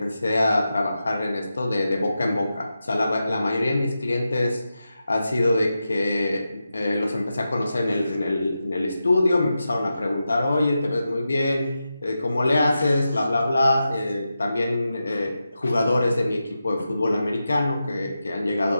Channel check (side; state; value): both; inverted; correlation -0.90